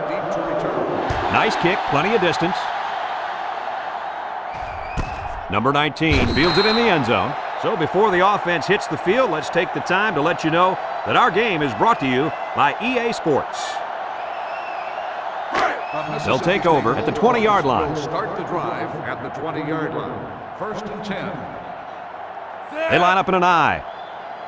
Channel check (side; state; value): both; identical; correlation 1.00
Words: Nice kick, plenty of distance. Number 19 fields it in the end zone. So before the offense hits the field, let's take the time to let you know that our game is brought to you by EA Sports. They'll take over at the 20-yard line. Start the drive at the 20-yard line. 1st and 10. They line up in an I.